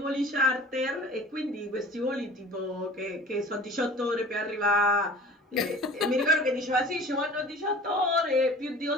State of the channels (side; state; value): both; normal; correlation 0.43